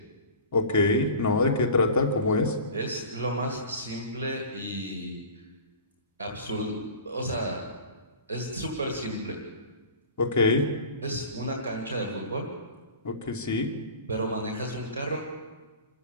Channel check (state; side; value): inverted; both; correlation -0.38